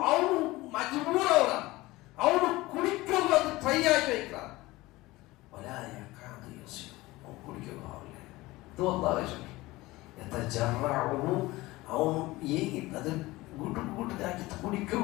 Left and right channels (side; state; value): right; quieter; 19.7 dB